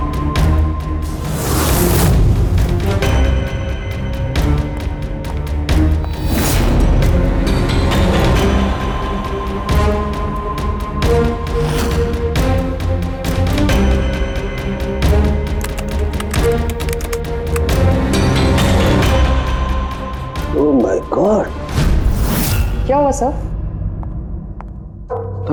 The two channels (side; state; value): both; identical; correlation 1.00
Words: क्या हुआ सर?